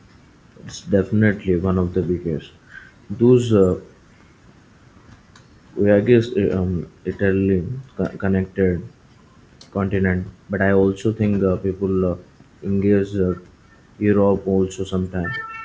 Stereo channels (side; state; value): both; identical; correlation 1.00